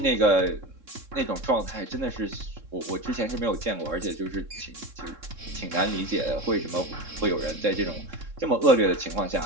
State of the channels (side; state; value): left; late; 3.7 ms